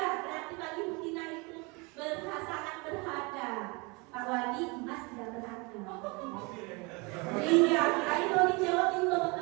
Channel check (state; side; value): quieter; left; 28.4 dB